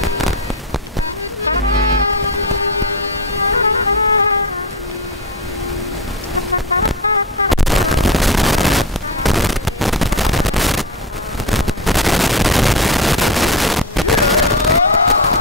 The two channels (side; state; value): both; normal; correlation 0.20